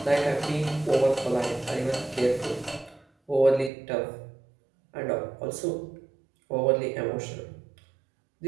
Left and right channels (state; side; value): drops out; left; at 3.7 s